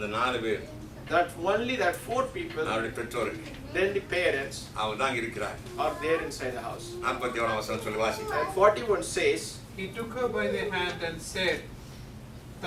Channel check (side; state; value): both; identical; correlation 1.00